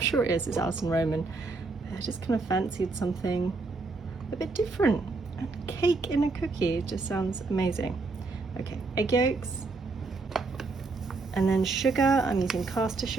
sure it is. It's Alison Roman. I just kind of fancied something a bit different. And cake in a cookie just sounds amazing. Okay, egg yolks. And then sugar, I'm using caster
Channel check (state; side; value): quieter; left; 3.8 dB